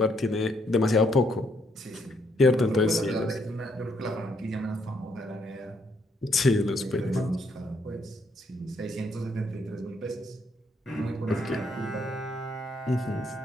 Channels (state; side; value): normal; both; correlation 0.72